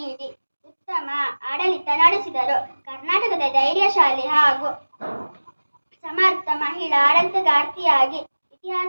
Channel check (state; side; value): inverted; both; correlation -1.00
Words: ಉತ್ತಮ ಆಡಳಿತ ನಡೆಸಿದರು. ಕರ್ನಾಟಕದ ಧೈರ್ಯಶಾಲಿ ಹಾಗೂ ಸಮರ್ಥ ಮಹಿಳಾ ಆಡಳಿತಗಾರ್ತಿಯಾಗಿ